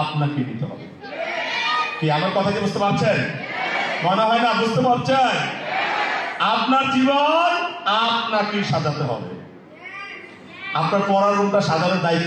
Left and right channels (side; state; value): both; identical; correlation 1.00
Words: নিতে হবে। কি আমার কথা কি বুঝতে পারছেন? মনে হয় না বুঝতে পারছেন? আপনার জীবন আপনাকে সাজাতে হবে। আপনার পড়ার রুমটা সাজানোর